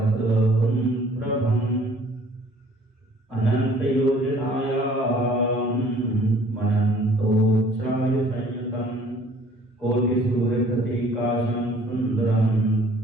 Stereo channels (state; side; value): normal; both; correlation 0.55